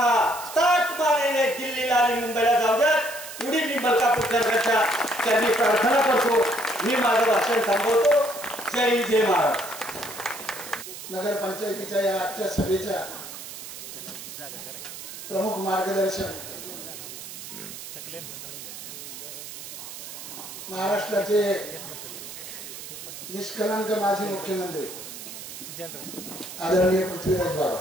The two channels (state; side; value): noise; right; hiss, 11 dB below the sound